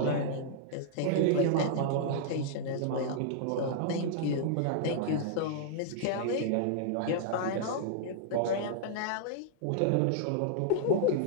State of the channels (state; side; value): different; both; correlation -0.01